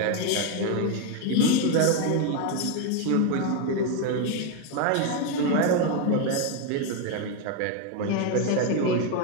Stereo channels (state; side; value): different; both; correlation 0.02